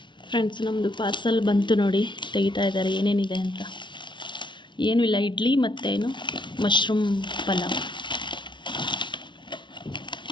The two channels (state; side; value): late; right; 0.23 ms